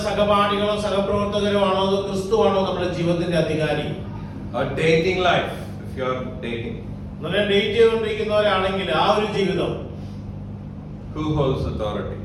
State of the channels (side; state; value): both; identical; correlation 1.00